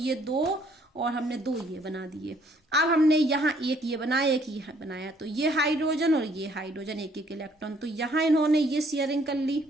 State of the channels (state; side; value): normal; both; correlation 0.64